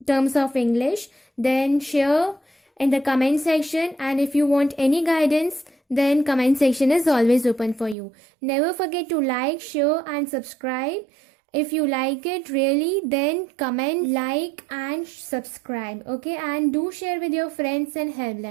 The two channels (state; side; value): drops out; left; at 8.0 s